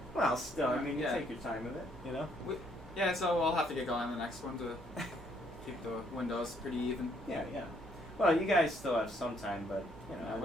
well, still, I mean, you take your time with it, you know. Yeah, so we'll have to get going on the next one to keep the windows pretty even. Yeah. Well, you guys still have some time, but you know,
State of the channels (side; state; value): both; normal; correlation 0.68